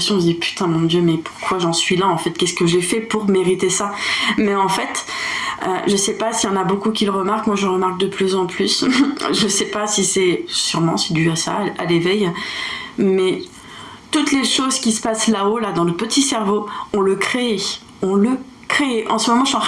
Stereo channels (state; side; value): identical; both; correlation 1.00